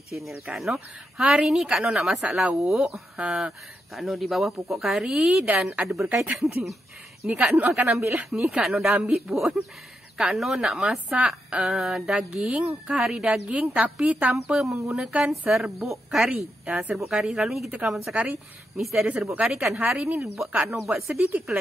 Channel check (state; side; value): normal; both; correlation 0.84